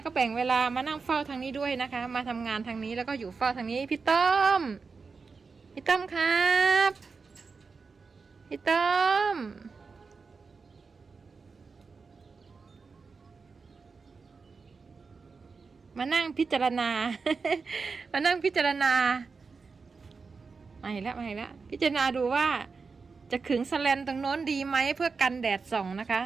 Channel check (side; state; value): left; quieter; 4.7 dB